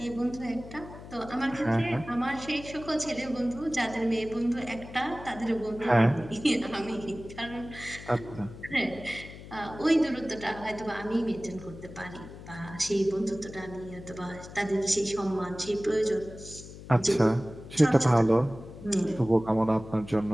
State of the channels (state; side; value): noise; left; hum, 15 dB below the sound